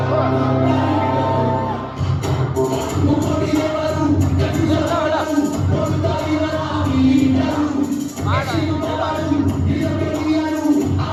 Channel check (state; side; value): identical; both; correlation 1.00